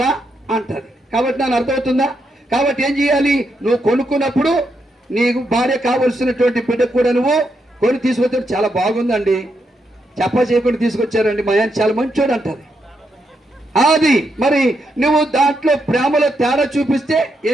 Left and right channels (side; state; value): both; normal; correlation 0.81